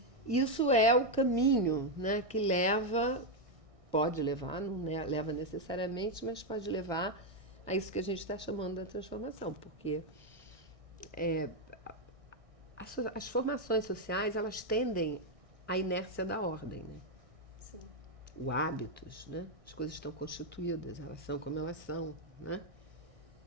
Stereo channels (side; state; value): left; late; 1.6 ms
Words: Isso é o caminho, né, que pode levar, não leva necessariamente, mas pode levar a isso que a gente está chamando da transformação, porque as formações sociais, elas tendem à inércia da ordem, né? Sim. O hábitos, né? As coisas estão constituídas, elas são como elas são, né?